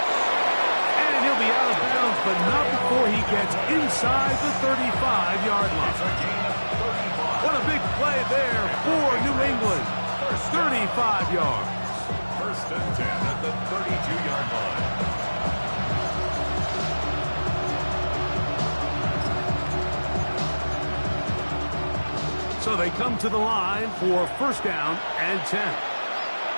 And he'll be out of bounds, but not before he gets inside the 35-yard line. What a big play there for New England. 35 yards. First and 10 at the 32-yard line. So they come to the line for 1st down and 10.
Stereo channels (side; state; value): both; inverted; correlation -1.00